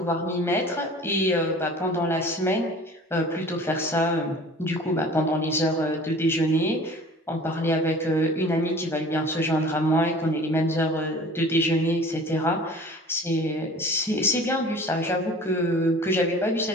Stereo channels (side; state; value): both; normal; correlation 0.45